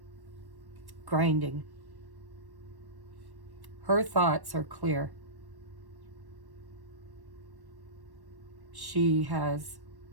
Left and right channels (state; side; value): late; left; 1.1 ms